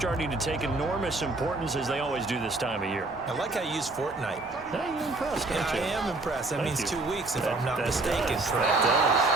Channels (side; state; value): left; quieter; 3.1 dB